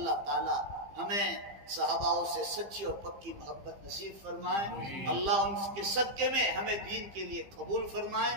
تعالی ہمیں صحابہ سے سچی اور پکی محبت نصیب فرمائے. اللہ ان کے صدقے میں ہمیں دین کے لیے قبول فرمائے,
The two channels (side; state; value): left; late; 15 ms